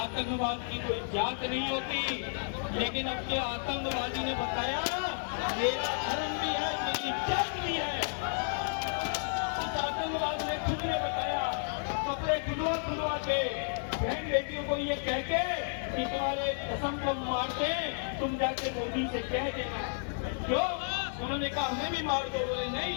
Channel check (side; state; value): right; silent; 56 dB below the other